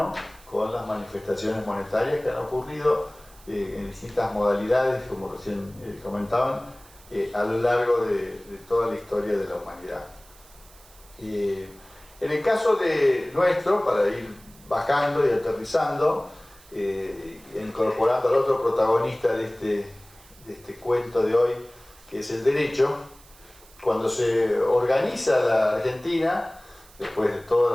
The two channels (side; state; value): right; noise; hiss, 24 dB below the sound